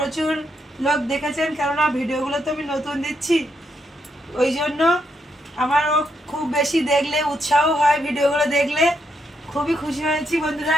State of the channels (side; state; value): both; normal; correlation 0.78